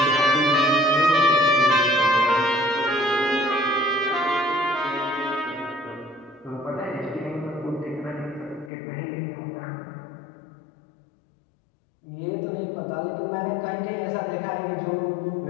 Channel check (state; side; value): drops out; right; at 8.7 s